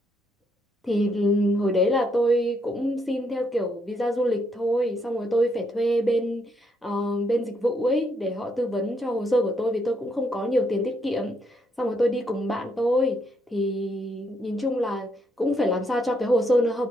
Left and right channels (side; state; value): both; normal; correlation 0.75